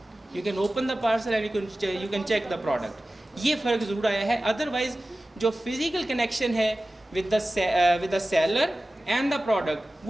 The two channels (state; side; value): normal; both; correlation 0.96